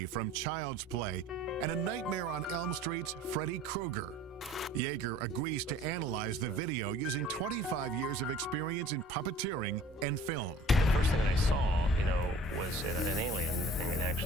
from Child's Play and A Nightmare on Elm Street's Freddy Krueger. Yeager agrees to analyze the video using 25 years of experience in puppeteering and film. The first thing that I saw, was an alien thing that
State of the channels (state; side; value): normal; both; correlation 0.48